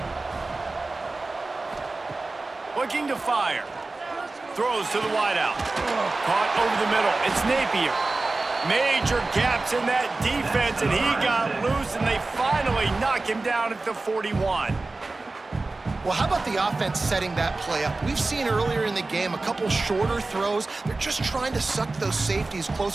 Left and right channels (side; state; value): left; quieter; 3.4 dB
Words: Looking to fire. Throws to the wideout. Caught over the middle. It's Napier. Major gaps in that defense, and he got loose, and they finally knock him down at the 41. Well, how about the offense setting that play up? We've seen earlier in the game a couple shorter throws. They're just trying to suck those safeties